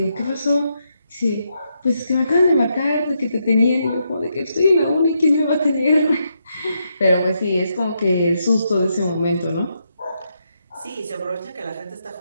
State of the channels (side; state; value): both; inverted; correlation -0.80